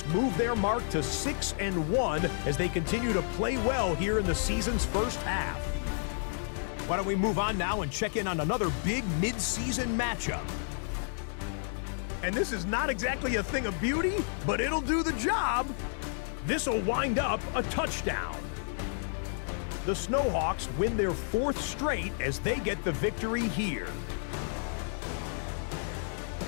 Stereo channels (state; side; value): silent; right; digital silence